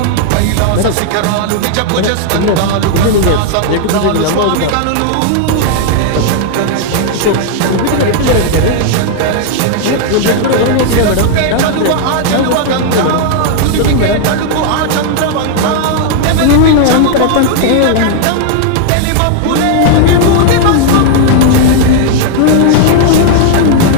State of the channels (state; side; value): different; both; correlation 0.00